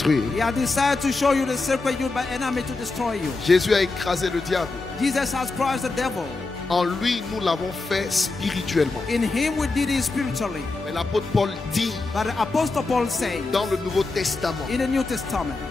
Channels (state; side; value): quieter; right; 3.6 dB